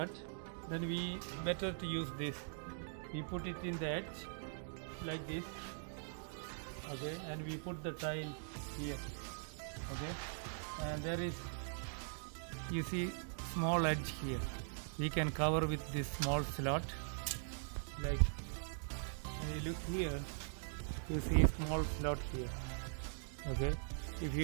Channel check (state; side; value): silent; left; digital silence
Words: Then we better to use this. We put it in the edge like this. Okay, and we put the tile here. Okay, and there is, you see, small edge here. We can cover with this small slot. Like, when you look here, you see small slot here. Okay, if